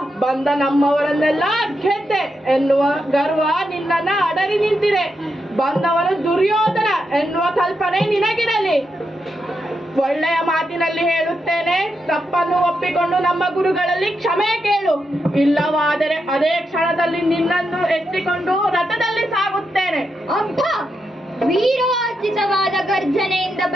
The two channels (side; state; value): both; normal; correlation 0.84